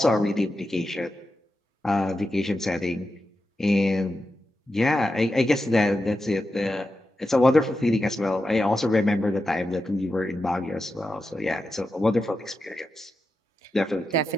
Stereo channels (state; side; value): normal; both; correlation 0.89